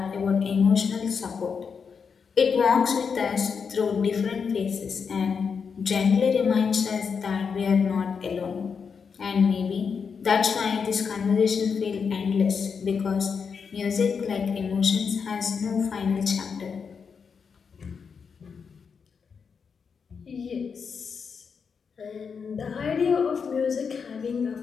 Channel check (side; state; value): right; quieter; 6.0 dB